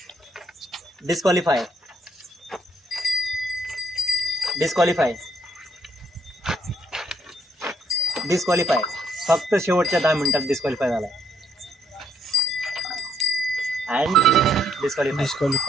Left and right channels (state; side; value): normal; both; correlation 0.71